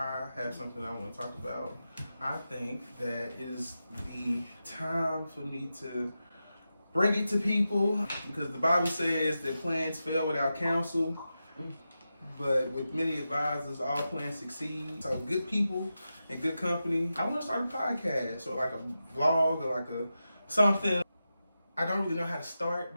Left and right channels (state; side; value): inverted; both; correlation -0.91